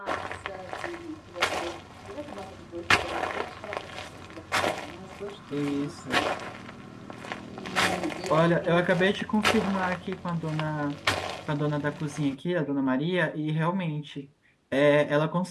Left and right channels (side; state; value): both; identical; correlation 1.00